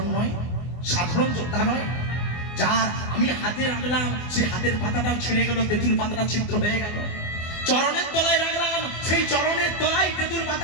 নয়, সাধারণ যোদ্ধা নয়। যার আমি হাতে রাখলাম সেই হাতের পাতাটাও ছিঁড়ে গেল, তেঁতুল পাতাটা ছিদ্র হয়ে গেল। চরণের তলায় রাখলাম সেই চরণের তলায় তেঁতুল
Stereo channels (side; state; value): right; late; 24 ms